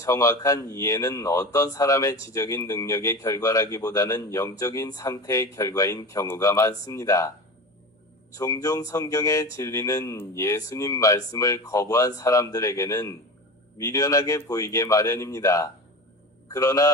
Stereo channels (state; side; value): normal; both; correlation 0.30